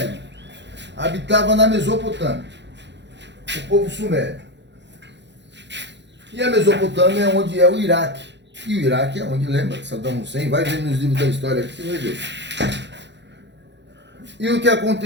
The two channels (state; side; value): late; left; 0.52 ms